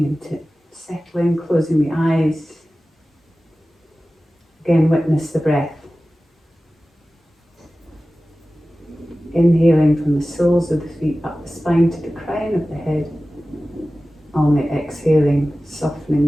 into it, settling, closing the eyes. Again, witness the breath. Inhaling from the soles of the feet up the spine to the crown of the head. On the exhaling,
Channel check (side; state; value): both; normal; correlation 0.96